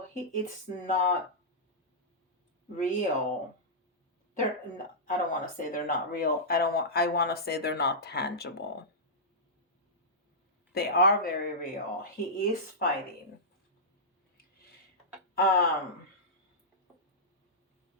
it's not real. I don't want to say they're not real. I want to say they're not tangible. They are very real. He is fighting.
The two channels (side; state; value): both; normal; correlation -0.13